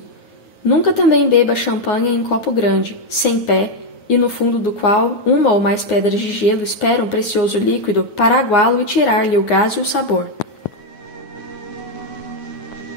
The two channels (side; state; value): right; late; 9.6 ms